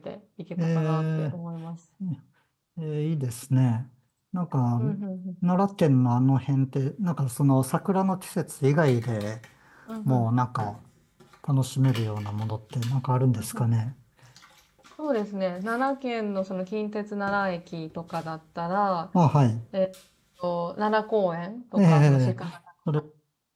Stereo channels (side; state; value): both; identical; correlation 1.00